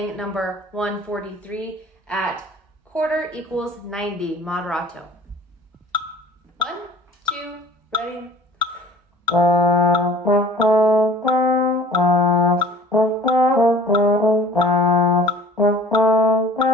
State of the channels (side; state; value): both; normal; correlation 0.47